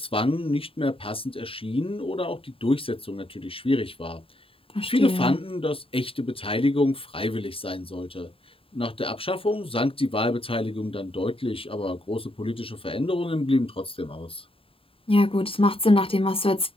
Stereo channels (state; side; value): late; right; 0.27 ms